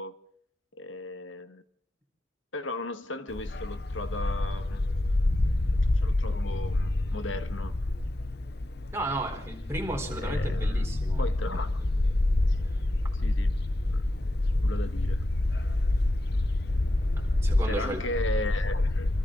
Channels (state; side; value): normal; both; correlation 0.89